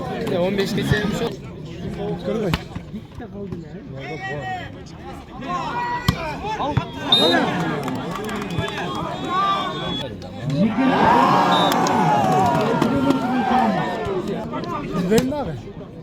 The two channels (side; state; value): both; identical; correlation 1.00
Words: 15 geçelim şu. Verin abi.